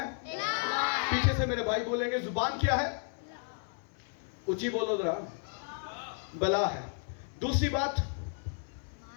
پیچھے سے میرے بھائی بولیں گے زبان کیا ہے؟ اونچی بولو ذرا، بلا ہے۔ دوسری بات،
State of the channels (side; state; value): right; silent; 56 dB below the other